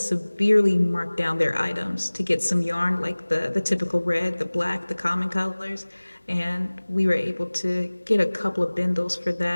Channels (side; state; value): both; inverted; correlation -1.00